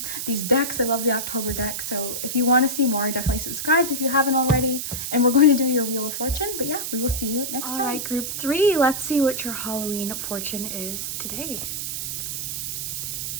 these decks. I love the October deck. So if you want to see more, definitely subscribe if you haven't already. And we're going to do your Wheel of Fortune. But yeah, we will see you next time. All right, group 3. Let's see what your Halloween fortune is today.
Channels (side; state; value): right; noise; hiss, 4 dB below the sound